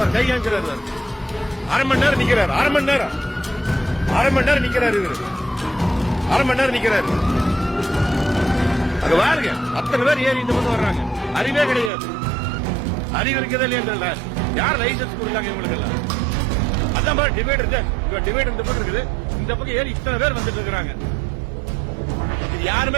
கை காமிக்கிறாரு, அரை மணி நேரம் நிக்கிறாரு, அரை மணி நேரம் நிக்கிறாரு, இவரு அரை மணி நேரம் நிக்கிறாரு. அங்க பாருங்க, அத்தனை பேர் ஏறி இந்த பக்கம் வர்றாங்க. அறிவே கிடையாது, அறிவு இருக்கதே இல்லையா? யார் லைசன்ஸ் கொடுத்தாங்க இவங்களுக்கு எல்லாம்? அதான் பாரு டிவைட் இந்த பக்கம் இருக்குது, இந்த பக்கம் ஏறி இத்தனை பேர் வந்துட்டு இருக்காங்க. இது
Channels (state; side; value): drops out; left; at 11.9 s